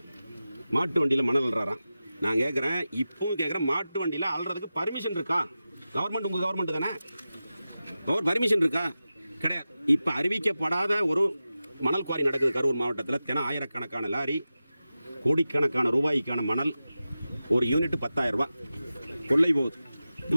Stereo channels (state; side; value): inverted; both; correlation -0.94